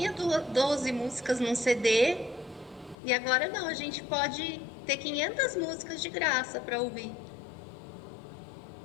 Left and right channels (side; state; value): right; drops out; at 3.0 s